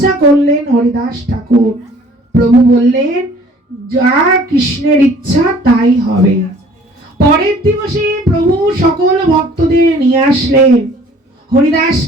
করলেন হরিদাস ঠাকুর। প্রভু বললেন, যা কৃষ্ণের ইচ্ছা তাই হবে। পরের দিবসে প্রভু সকল ভক্তদের নিয়ে আসলেন।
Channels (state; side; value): normal; both; correlation 0.53